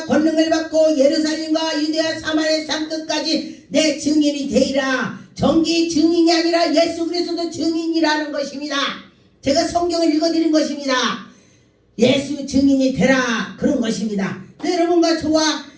권능을 받고 예루살렘과 유대와 사마리아 땅끝까지 내 증인이 되리라. 정기 증인이 아니라 예수 그리스도 증인이라는 것입니다. 제가 성경을 읽어드린 것입니다. 예수 증인이 되라 그런 것입니다. 여러분과 저와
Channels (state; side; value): identical; both; correlation 1.00